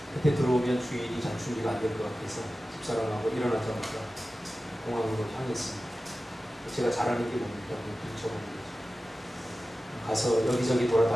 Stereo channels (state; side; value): normal; both; correlation 0.95